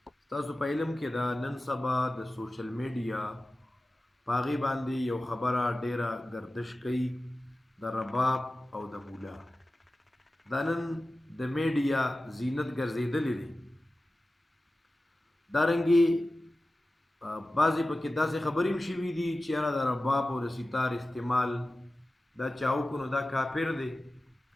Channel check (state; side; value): normal; both; correlation 0.95